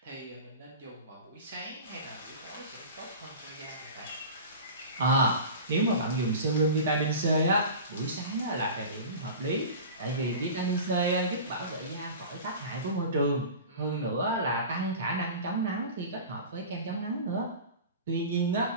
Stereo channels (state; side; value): inverted; both; correlation -0.34